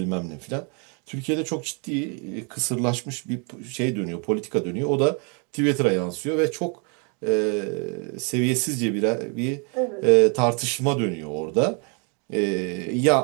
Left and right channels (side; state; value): left; quieter; 35.7 dB